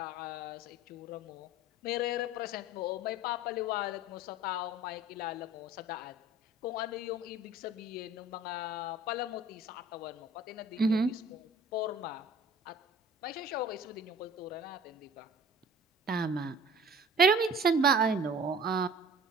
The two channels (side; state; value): both; normal; correlation 0.46